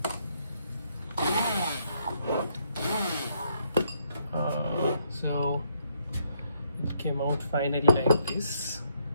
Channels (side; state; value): both; inverted; correlation -0.72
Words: So it came out finally like this.